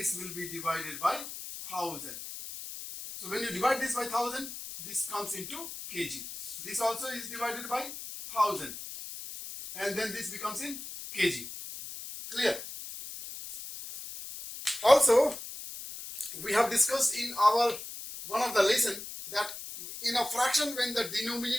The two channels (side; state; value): left; noise; hiss, 10 dB below the sound